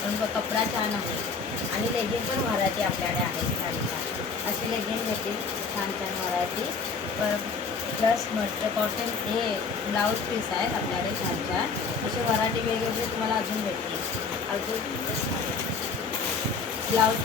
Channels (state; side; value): quieter; right; 4.9 dB